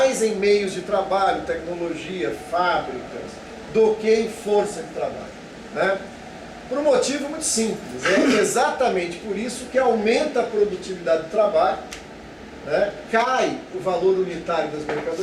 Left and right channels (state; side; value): identical; both; correlation 1.00